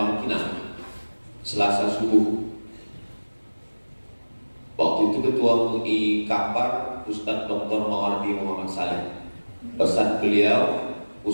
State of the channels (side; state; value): both; inverted; correlation -1.00